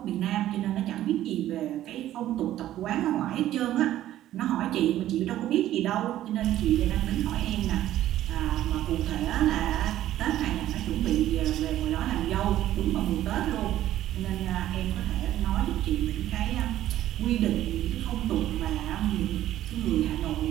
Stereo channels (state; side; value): quieter; left; 13.2 dB